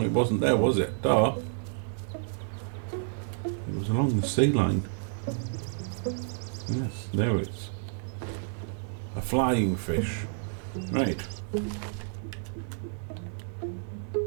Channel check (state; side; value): silent; left; 58 dB below the other